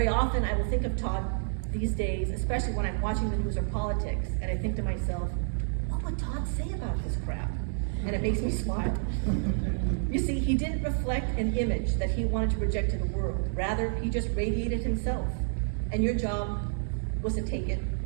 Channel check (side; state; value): left; silent; digital silence